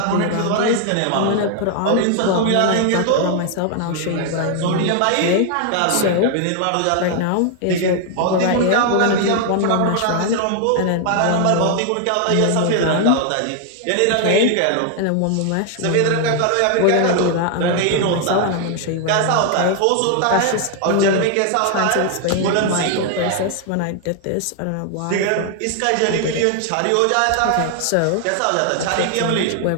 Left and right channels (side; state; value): both; different; correlation 0.00